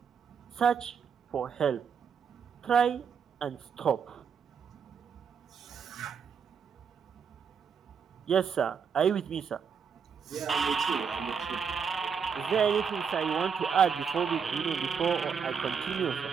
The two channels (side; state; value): left; quieter; 6.6 dB